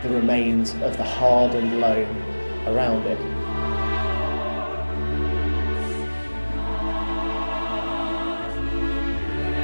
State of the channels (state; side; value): inverted; both; correlation -1.00